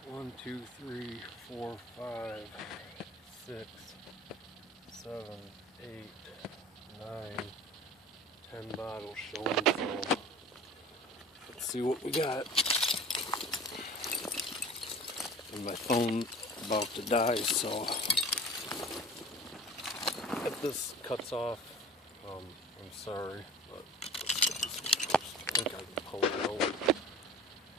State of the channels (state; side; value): normal; both; correlation 0.41